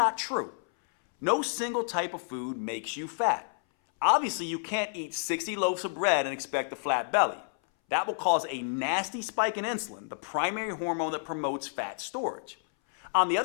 true. No single type of food makes you fat. Obviously, you can't eat 60 loaves of bread and expect a flat belly. That will cause a nasty spike in insulin, the primary hormone that promotes fat storage. On the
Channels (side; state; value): right; silent; 58 dB below the other